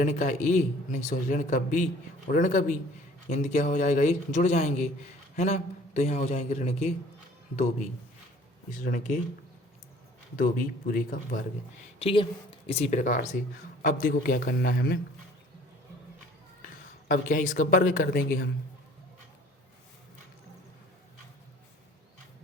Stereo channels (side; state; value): both; normal; correlation 0.52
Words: का a नहीं सॉरी ऋण का b और ऋण का b, यानी क्या हो जाएगा, ये जुड़ जाएंगे, है ना। तो यहाँ हो जाएंगे ऋण के 2b, इस ऋण के 2b पूरे का वर्ग। ठीक है, इसी प्रकार से अब देखो क्या करना है हमें, अब क्या है इसका वर्ग कर देंगे हम।